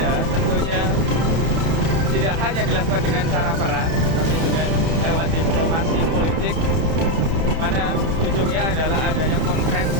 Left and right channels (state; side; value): late; left; 31 ms